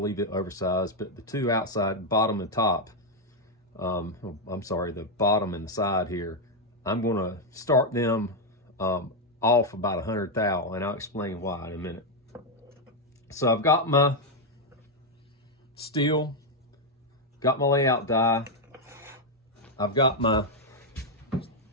leave it oversized, but the 2 outside, bottom and top, I'm sorry, the bottom and the side here, I'm gonna start them off about 100 thou, and I'll explain why in a minute. So I've got my steel, got my layout die, I've got my, as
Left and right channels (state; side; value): normal; both; correlation 0.02